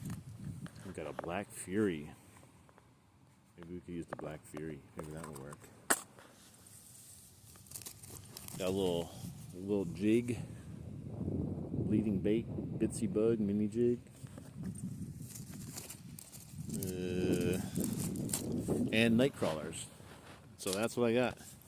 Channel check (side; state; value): both; identical; correlation 1.00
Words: We got a Black Fury. Maybe we could use the Black Fury. Maybe that will work. Got a little jig. Bleeding bait. Bitsy bug mini jig. And night crawlers. So that's what I got.